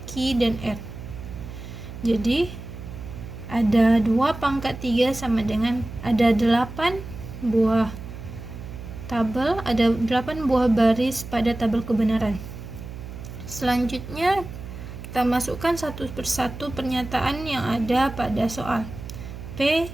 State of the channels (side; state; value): right; noise; hum, 11 dB below the sound